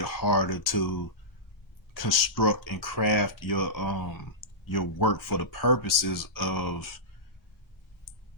harder to construct and craft your work for the purposes of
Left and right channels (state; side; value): normal; both; correlation -0.17